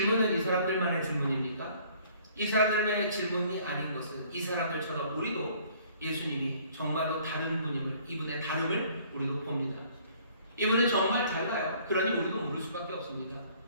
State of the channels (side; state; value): both; inverted; correlation -0.57